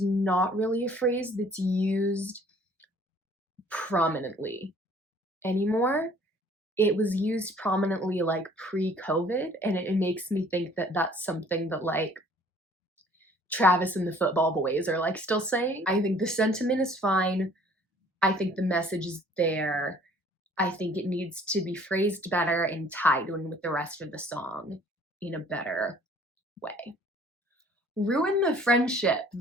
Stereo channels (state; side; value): normal; both; correlation 0.55